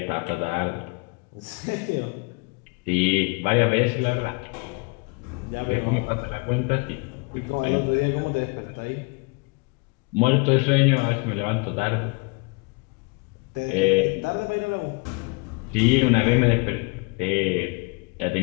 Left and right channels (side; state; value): right; quieter; 29.2 dB